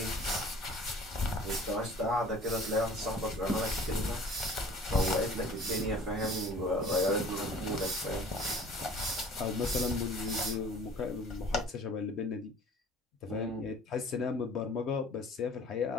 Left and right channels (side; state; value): both; normal; correlation 0.48